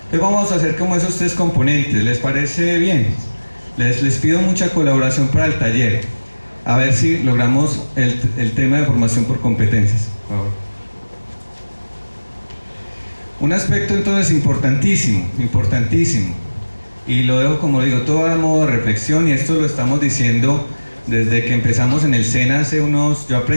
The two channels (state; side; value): inverted; both; correlation -1.00